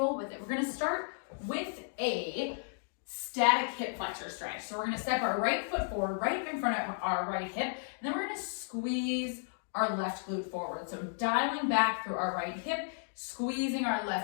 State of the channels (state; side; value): silent; right; digital silence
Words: with it. We're going to start with a static hip flexor stretch. So we're going to step our right foot forward, right in front of our right hip, and then we're going to squeeze our left glute forward. So dialing back through our right hip, squeezing our